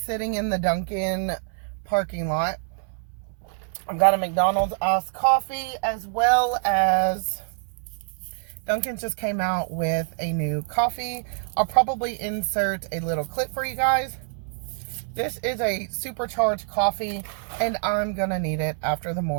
in the Dunkin' parking lot. I've got a McDonald's iced coffee, as well as Dunkin' just came out with a new coffee. I'll probably insert a little clip for you guys. This is a supercharged coffee, and I'm gonna need it after the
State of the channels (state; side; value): silent; left; 61 dB below the other